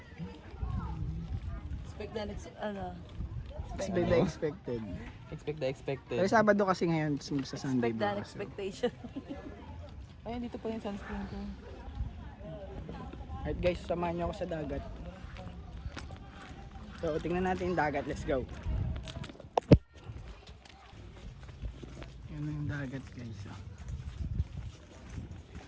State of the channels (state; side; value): identical; both; correlation 1.00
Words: Expect na ano. Expect the expected. Expect the expected. Pero Sabado kasi ngayon sa Sunday Expect the bukas. So, expectation. Ayun, dito pa yung sunscreen ko. alright guys, samahan nyo ako sa dagat. So tingnan natin yung dagat. Let's go. Yan na yung dagat guys. Oh.